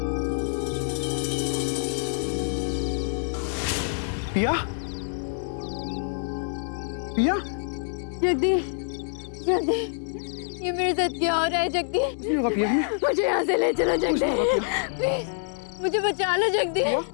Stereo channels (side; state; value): right; silent; 61 dB below the other